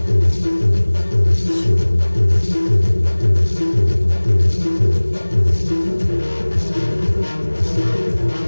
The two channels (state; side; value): inverted; both; correlation -1.00